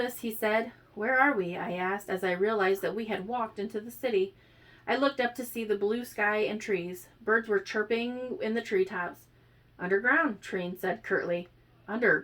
he said. Where are we? I asked, as I realized that we had walked into the city. I looked up to see the blue sky and trees. Birds were chirping in the treetops. Underground, Treen said curtly.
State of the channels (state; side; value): identical; both; correlation 1.00